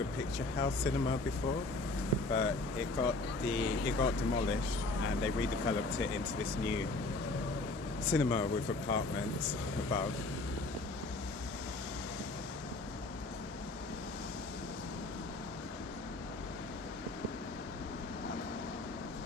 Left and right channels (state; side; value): quieter; right; 3.1 dB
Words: picture house cinema before, but it got demolished, and they redeveloped it into this new cinema with apartments above.